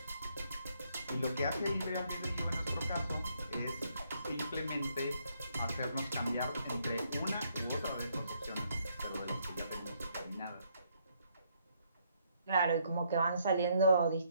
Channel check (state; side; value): inverted; both; correlation -0.71